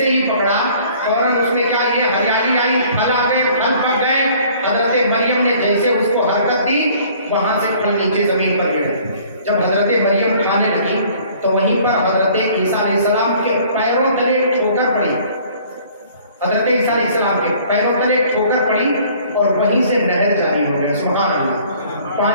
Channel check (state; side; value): inverted; both; correlation -0.54